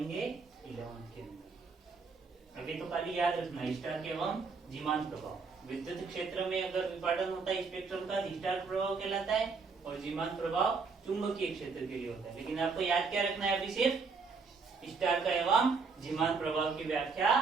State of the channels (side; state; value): left; quieter; 4.8 dB